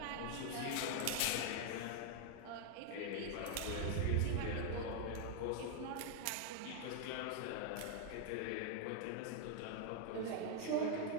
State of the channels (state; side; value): different; both; correlation 0.00